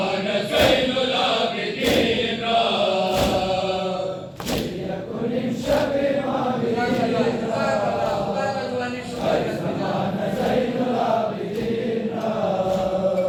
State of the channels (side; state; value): both; identical; correlation 1.00